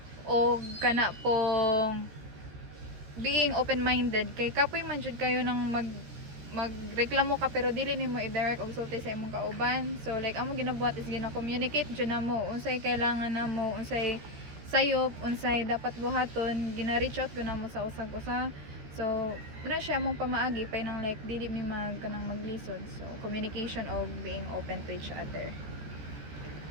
o kana pong being open-minded kay kapoy man jud kayo nang magreklamo ka pero dili nimo i-direct og sulti sa imong kauban. So like among ginabuhat is gina-communicate jud namo unsay kailangan namo, unsay sayop, unsay dapat buhaton, gina-reach out ko namo sa usag-usa. So muna siya mong pamaagi pay nang like dili mi kanang maglisod. So communication og being open to each other.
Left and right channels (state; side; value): late; left; 14 ms